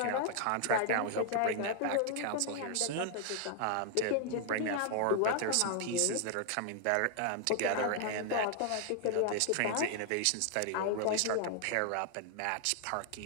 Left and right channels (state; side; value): different; both; correlation -0.01